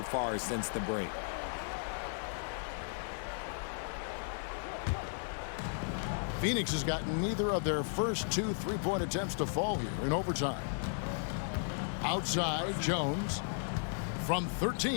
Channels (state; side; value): silent; right; digital silence